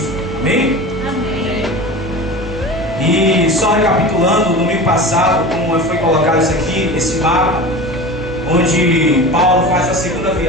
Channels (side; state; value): right; noise; hum, 12 dB below the sound